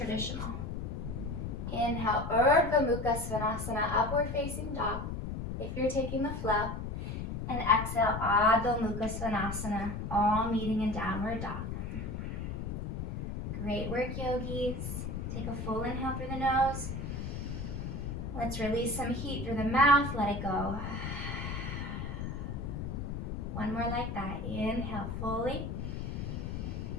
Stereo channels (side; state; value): left; noise; rumble, 4 dB below the sound